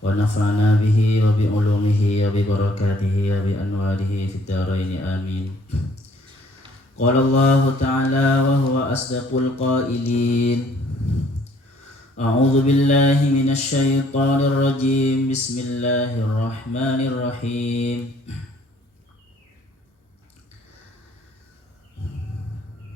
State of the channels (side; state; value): both; normal; correlation 0.61